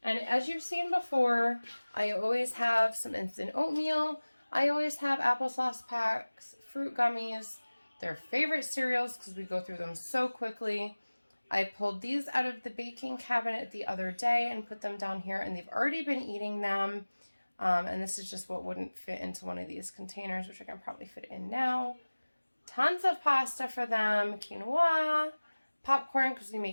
And as you've seen before, I always have some instant oatmeal. I always have applesauce packs, fruit gummies, their favorite cereals because we go through them so quickly. I pulled these out of the baking cabinet the other day and put them down here, and they've already been eating them. And this is just what wouldn't fit into one of these containers, which I can probably fit in now. Tons of pasta for them, quinoa, popcorn because we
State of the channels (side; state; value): both; inverted; correlation -1.00